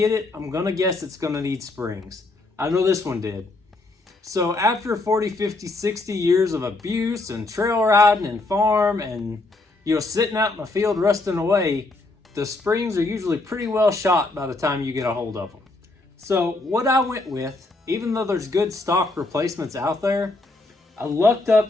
it, I'm gonna guess it's gonna need springs. I know this one did. So after 40, 50, 60 years of abuse and trail riding and farm and, you know, sitting out in the field rusting away, the springs are usually pretty well shot by the time you get a hold of them. So what I went with, even though there's good stock replacements out there, I lucked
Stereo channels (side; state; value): right; quieter; 3.1 dB